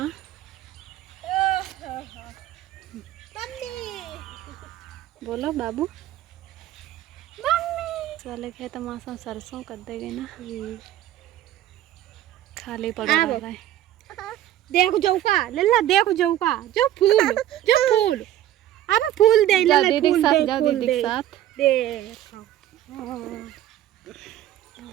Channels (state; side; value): quieter; left; 12.8 dB